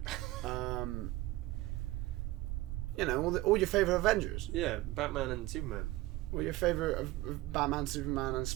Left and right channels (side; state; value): left; quieter; 18.4 dB